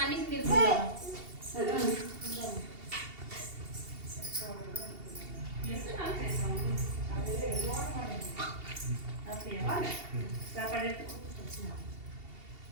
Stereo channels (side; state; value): left; late; 2.8 ms